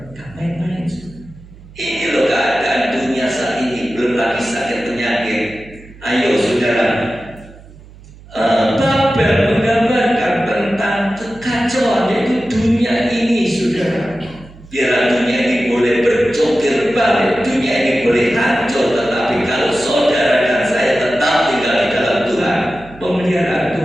Gak main-main. Ini loh keadaan dunia saat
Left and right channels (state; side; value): noise; right; hum, 21 dB below the sound